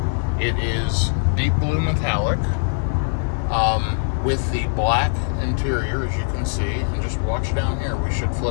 It is deep blue metallic with the black interior, as you can see. And just watch down here. We should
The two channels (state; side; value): silent; right; digital silence